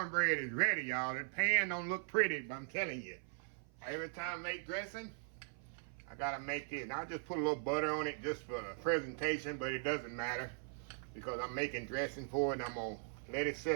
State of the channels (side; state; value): left; silent; 51 dB below the other